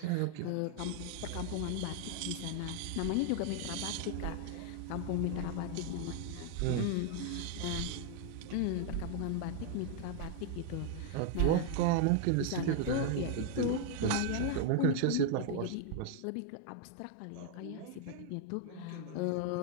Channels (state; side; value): different; both; correlation 0.00